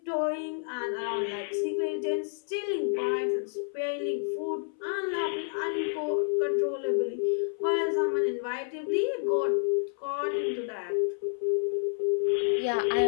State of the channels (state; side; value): silent; right; 58 dB below the other